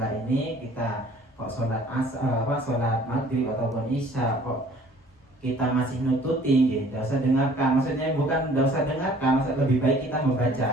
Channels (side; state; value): both; normal; correlation 0.54